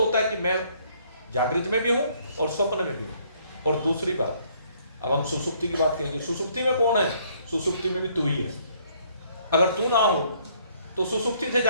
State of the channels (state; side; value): inverted; both; correlation -0.64